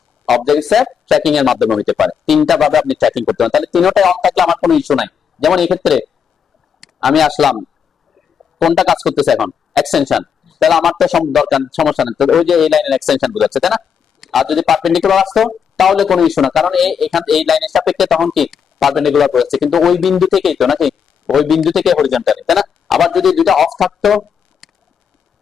অবজেক্ট স্ন্যাপ ট্র্যাকিং এর মাধ্যমে হতে পারে। তিনটা ভাবে আপনি ট্র্যাকিং করতে পারেন। তাহলে তিনটাই অন থাকলে আমার কোনো ইস্যু নাই। যেমন এই ক্ষেত্রে আমি আসলাম, কোনটা কাজ করতেছে এখন? এক্সটেনশন, তাহলে আমার তো দরকার, সমস্যা নেই। ওই যে এই লাইনের এক্সটেনশন বোঝাচ্ছে, তাই না? আর যদি পারপেন্ডিকুলার আসতো তাহলে কোনো ইস্যু না, কারণ এখান এই লাইনের সাপেক্ষে তখন কি পারপেন্ডিকুলার বোঝাচ্ছে, কিন্তু ওই বিন্দু থেকেই তো, নাকি? ওই বিন্দু থেকে হরিজন্টালি, তাই না? আবার যদি দুইটা অফ থাকতো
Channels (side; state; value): right; quieter; 7.3 dB